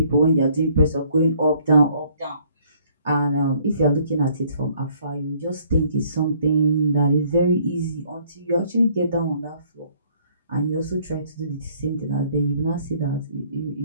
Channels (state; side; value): inverted; both; correlation -0.62